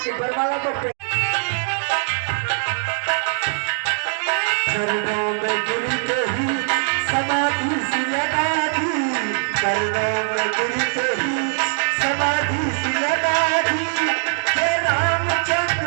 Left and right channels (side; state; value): left; silent; digital silence